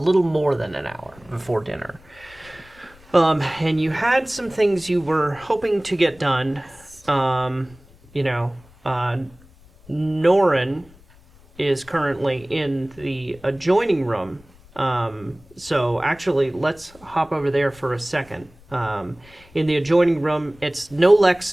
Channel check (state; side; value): noise; left; rumble, 26 dB below the sound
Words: more than an hour before dinner. And you had some things you were hoping to get done. Norren is currently in the adjoining room. So actually, let's hop over there for a second. In the adjoining room, it's no